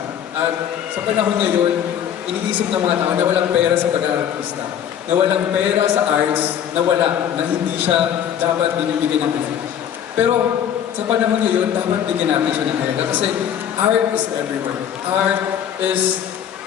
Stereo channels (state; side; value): quieter; right; 9.5 dB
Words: at sa panahon ngayon, iniisip ng mga tao na walang pera sa pag-artista, na walang pera sa arts, na hindi siya dapat binibigyan ng pera. Pero sa panahon ngayon, dapat bigyan natin siya ng halaga kasi art is everywhere. Art is